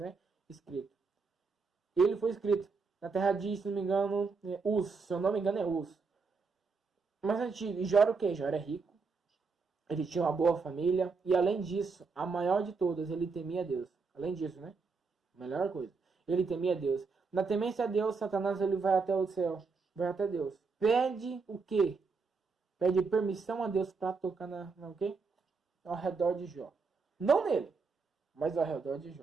Escrito. Ele foi escrito na terra de, se não me engano, Uz. Se eu não me engano, é Uz. Mas antigo, e Jó era o quê? Jó era rico, ele tinha uma boa família, e além disso, a maior de todas, ele temia Deus. Além disso, né? Melhor coisa. Ele temia Deus. Na temência a Deus, Satanás ele vai até o céu, vai até Deus. Pede o quê? Pede permissão a Deus para tocar o quê? Ao redor de Jó. Não nele, mas ao redor de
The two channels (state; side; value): quieter; left; 4.7 dB